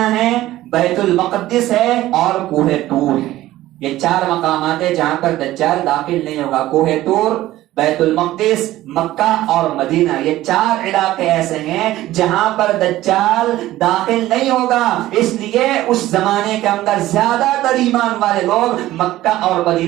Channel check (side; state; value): left; quieter; 15.5 dB